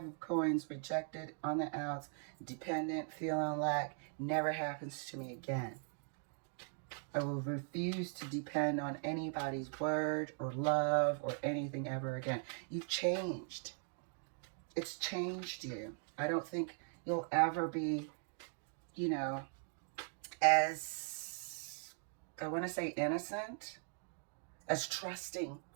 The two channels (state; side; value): silent; left; 51 dB below the other